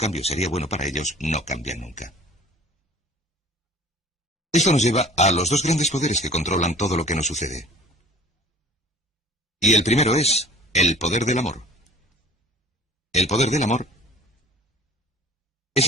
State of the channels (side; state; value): both; normal; correlation 0.47